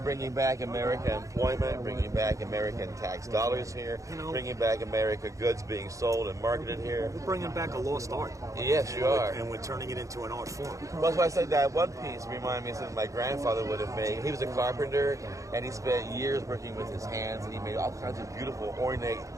bringing back American employment, bringing back American tax dollars here, bringing back American goods being sold and marketed here. We're bringing back a lost art. Yes, you are. And we're turning it into an art form. That's why I said that one piece reminded me of something my grandfather would have made. He was a carpenter, and he spent years working with his hands, and he made all kinds of beautiful, ornate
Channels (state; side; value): late; left; 0.15 ms